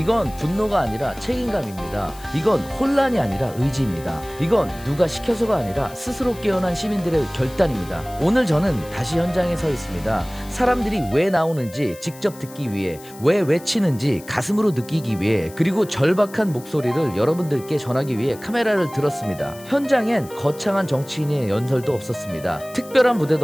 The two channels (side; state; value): left; noise; hiss, 20 dB below the sound